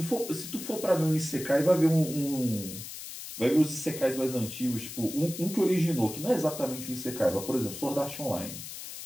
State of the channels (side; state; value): left; noise; hiss, 10 dB below the sound